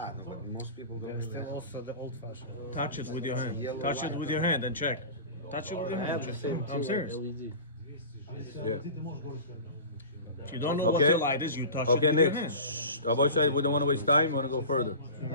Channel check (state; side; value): inverted; both; correlation -0.34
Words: no, but most people don't understand. Touch it with your hand. Touch it with your hand and check. Touch it with your I hand. have the Check. same I'm tier serious. LED. Yeah. If you don't know what Okay. the light is, you touch Okay, it with your next. hand. Shh. Rabbi Shai, we don't want to waste time. We want to go further. Can